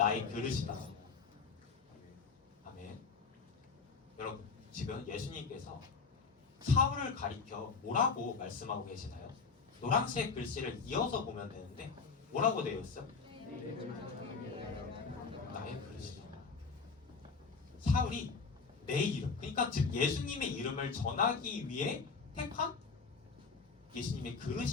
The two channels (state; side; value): quieter; right; 4.9 dB